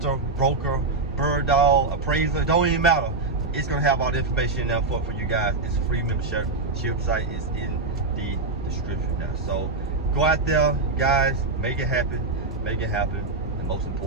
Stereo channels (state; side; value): quieter; left; 3.6 dB